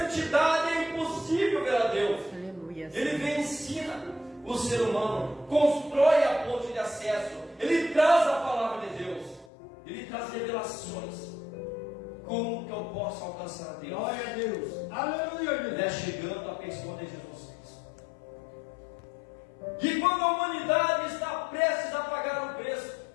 é impossível ver a Deus. Ele vem e ensina o ser humano, constrói a ponte de acesso, ele traz a palavra de Deus, ele traz revelações. Como que eu posso alcançar a Deus? Glória a Deus. Aleluia, Deus. É chegando a pessoa de Jesus Cristo. E quando a humanidade está prestes a pagar o preço,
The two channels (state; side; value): drops out; right; at 9.5 s